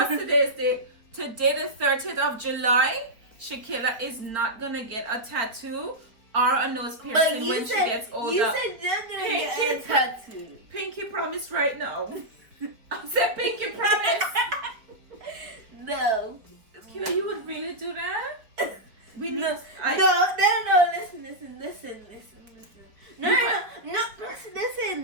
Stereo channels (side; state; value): left; late; 4.4 ms